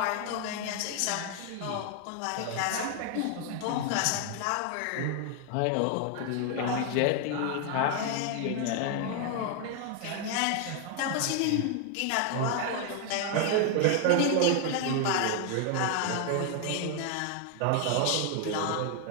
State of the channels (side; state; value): both; different; correlation 0.00